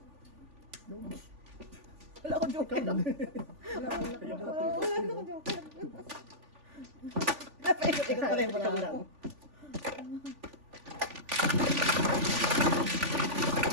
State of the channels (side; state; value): left; late; 3.5 ms